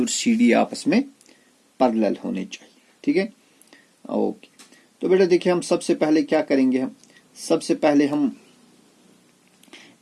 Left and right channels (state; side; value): identical; both; correlation 1.00